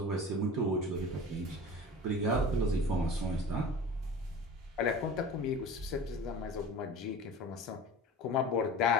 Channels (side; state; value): both; normal; correlation 0.37